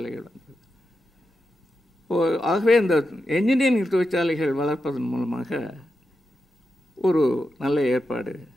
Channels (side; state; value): both; normal; correlation 0.88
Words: வந்தது. ஆகவே இந்த என்ஜினியரிங் தொழிற்சாலைகள் வளர்ப்பதன் மூலமாக ஒரு நல்ல ஏற்பாடு